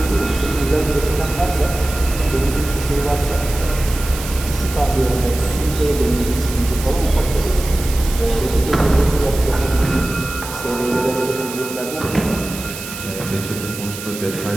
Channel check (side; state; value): right; noise; hiss, 10 dB below the sound